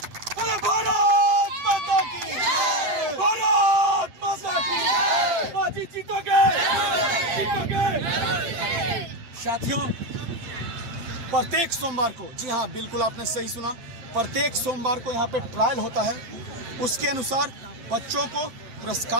अरे भारत माता की, भारत माता की, बाजी जीतोगे। साथियों, प्रत्येक सोमवार को, जी हाँ बिल्कुल आपने सही सुना, प्रत्येक सोमवार को यहाँ पे ट्रायल होता है। उसके अनुसार बच्चों को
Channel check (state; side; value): late; left; 8.8 ms